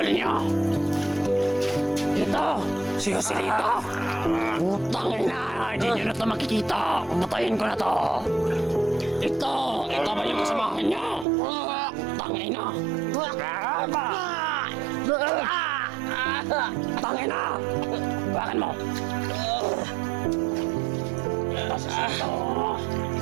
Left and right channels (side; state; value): left; drops out; at 11.2 s